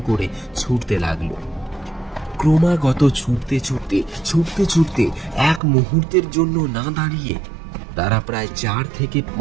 করে ছুটতে লাগলো। ক্রমাগত ছুটতে ছুটতে ছুটতে ছুটতে এক মুহূর্তের জন্য না দাঁড়িয়ে তারা প্রায় 4 থেকে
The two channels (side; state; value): left; drops out; at 5.6 s